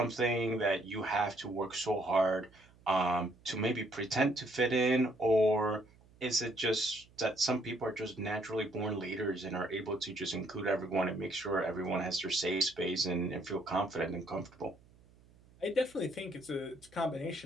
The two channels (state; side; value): noise; right; hum, 27 dB below the sound